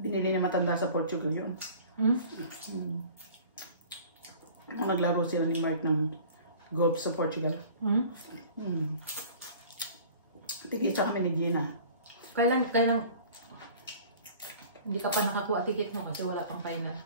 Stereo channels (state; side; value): inverted; both; correlation -0.45